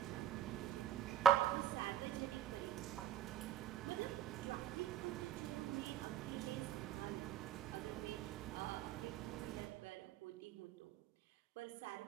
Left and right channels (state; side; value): quieter; left; 9.6 dB